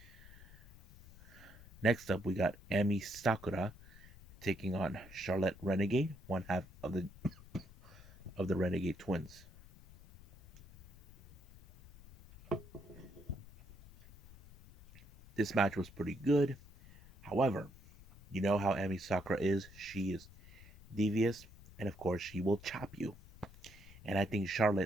Next up, we got Emi Sakura taking on Charlotte Renegade, one half of the Renegade twins. This match was pretty good. However, you know how Emi Sakura is. She is devious, and of course, she will chop you. And I think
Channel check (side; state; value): left; noise; rumble, 20 dB below the sound